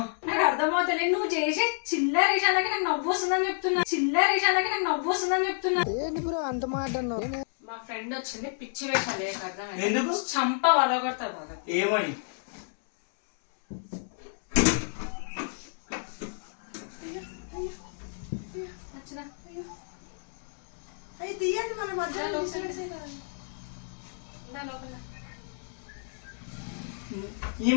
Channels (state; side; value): silent; right; 58 dB below the other